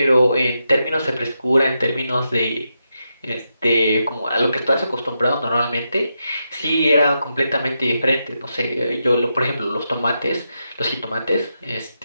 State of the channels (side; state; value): both; inverted; correlation -0.85